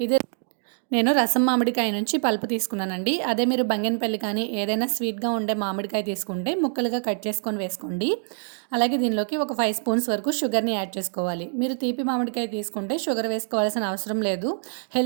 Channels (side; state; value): left; silent; 62 dB below the other